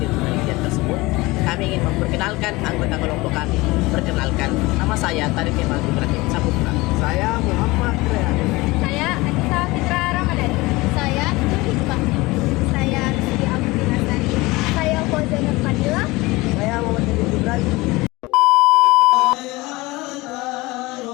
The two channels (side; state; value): right; quieter; 21.8 dB